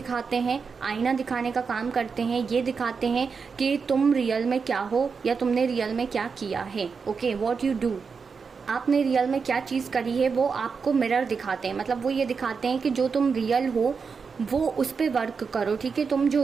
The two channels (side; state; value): left; quieter; 5.4 dB